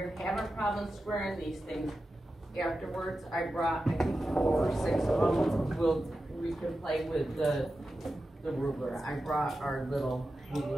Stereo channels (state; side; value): normal; both; correlation 0.92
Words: having problems squaring these things, afterwards I brought, I think 4 or 6 of them. We can play with the ruler. I brought our little